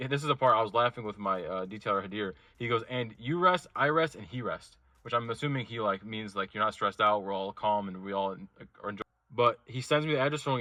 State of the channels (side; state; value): both; identical; correlation 1.00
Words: is the part I was laughing with my detailer Hadir. He goes, and you rest, I rest, and he rests. Which I'm assuming he means you're not stressed out. We're all calm and we all are enjoying. But he sends me the address